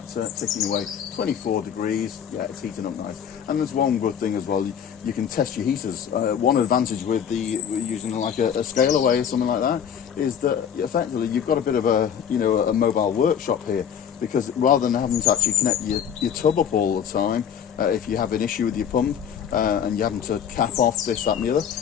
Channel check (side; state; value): right; quieter; 8.3 dB